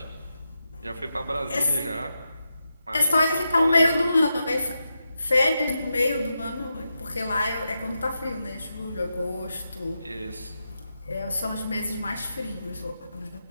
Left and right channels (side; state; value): both; inverted; correlation -0.87